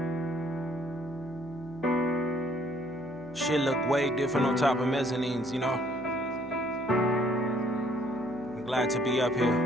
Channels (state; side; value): noise; right; hum, 21 dB below the sound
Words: Shit look way different on top of mezzanines, you know? I'm glad to be up